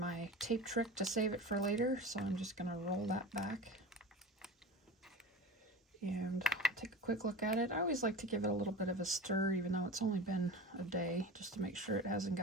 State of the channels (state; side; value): normal; both; correlation 0.32